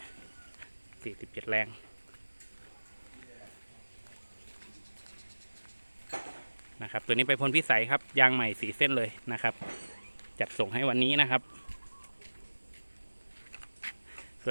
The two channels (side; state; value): both; inverted; correlation -1.00